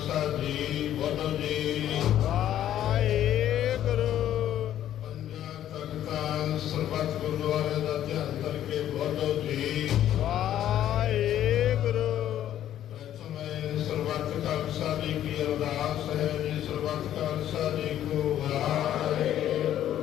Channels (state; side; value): quieter; right; 11.6 dB